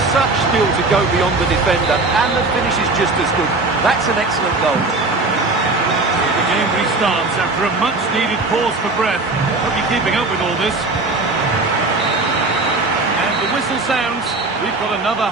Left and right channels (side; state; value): left; quieter; 3.4 dB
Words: such skill to go beyond the defender and the finish is just as good. That's an excellent goal. The game restarts after a much-needed pause for breath. Hope you're keeping up with all this. And the whistle sounds. We've got another